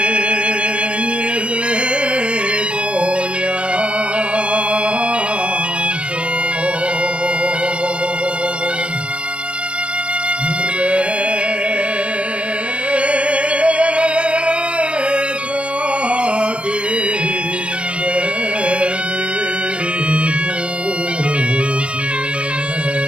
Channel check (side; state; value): left; late; 0.058 ms